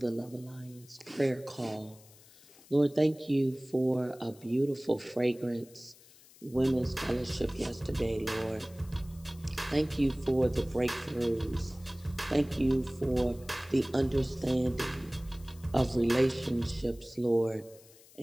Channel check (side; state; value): left; noise; hiss, 24 dB below the sound